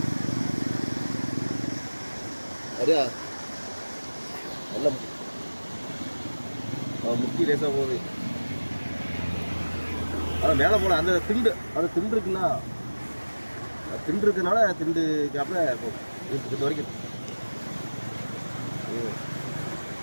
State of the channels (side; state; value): both; inverted; correlation -1.00